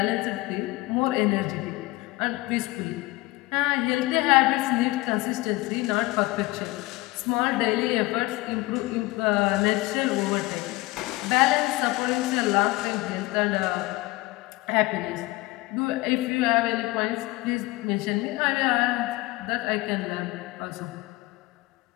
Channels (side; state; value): right; quieter; 21.2 dB